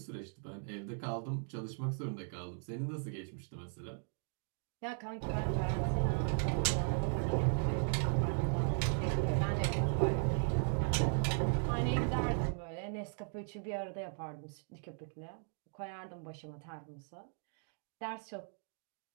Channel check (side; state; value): left; silent; 53 dB below the other